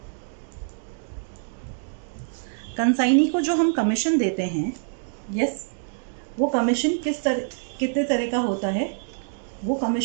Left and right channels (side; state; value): left; silent; digital silence